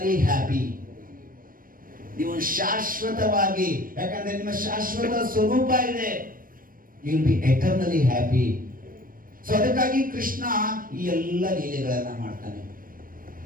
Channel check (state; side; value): late; left; 0.41 ms